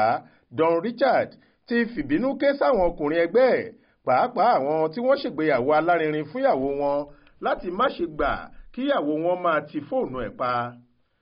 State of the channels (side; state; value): both; identical; correlation 1.00